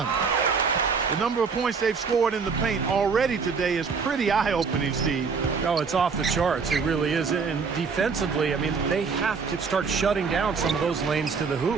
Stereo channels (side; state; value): left; quieter; 5.3 dB